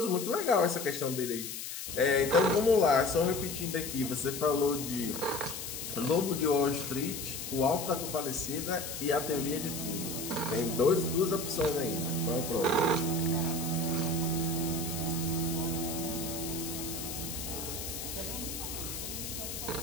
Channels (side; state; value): left; noise; hiss, 7 dB below the sound